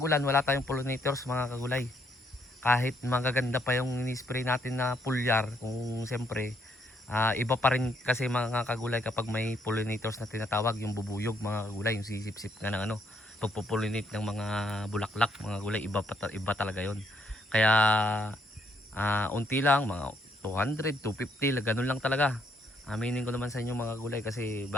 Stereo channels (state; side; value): normal; both; correlation 0.71